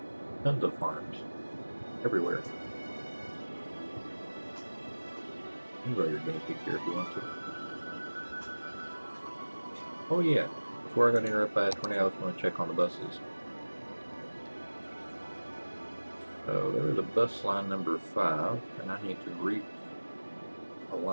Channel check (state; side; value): inverted; both; correlation -1.00